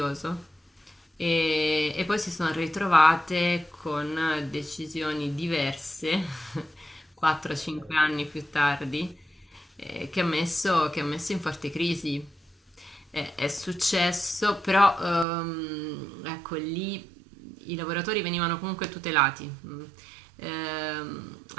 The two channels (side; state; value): left; drops out; at 15.2 s